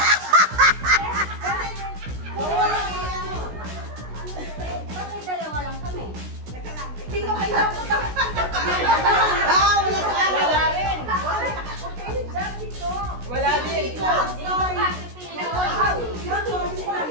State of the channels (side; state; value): left; late; 16 ms